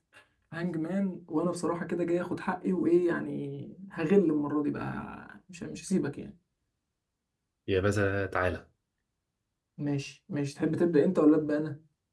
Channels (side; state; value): both; identical; correlation 1.00